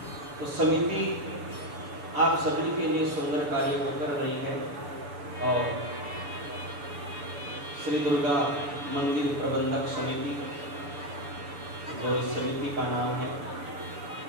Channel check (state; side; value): late; left; 6.9 ms